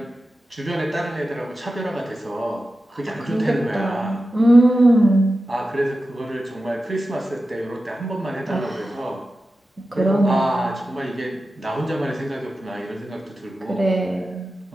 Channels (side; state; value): both; normal; correlation 0.93